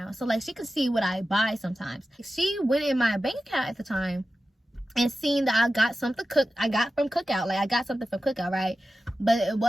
So like she could see what I buy sometimes. She went in my bank account at the time and seen that I got something I got from Cookout. Like I got something from Cookout, right? But it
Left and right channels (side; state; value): both; normal; correlation 0.93